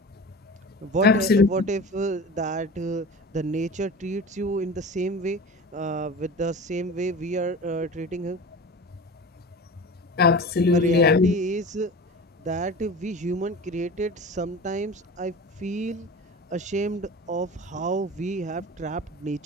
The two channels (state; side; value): normal; both; correlation 0.34